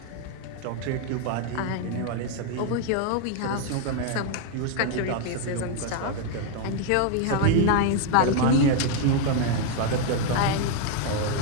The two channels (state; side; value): different; both; correlation 0.00